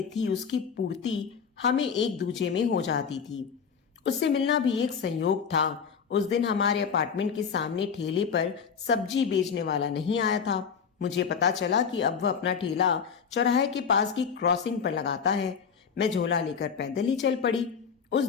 थी, उसकी पूर्ति हमें एक दूजे में हो जाती थी। उससे मिलना भी एक संयोग था। उस दिन हमारे अपार्टमेंट के सामने ठेले पर सब्जी बेचने वाला नहीं आया था। मुझे पता चला कि अब वह अपना ठेला चौराहे के पास की क्रॉसिंग पर लगाता है। मैं झोला लेकर पैदल ही चल पड़ी। उस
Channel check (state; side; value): quieter; right; 6.5 dB